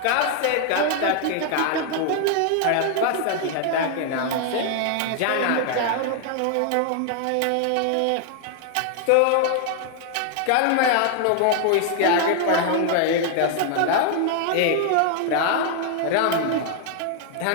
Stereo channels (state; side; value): different; both; correlation 0.00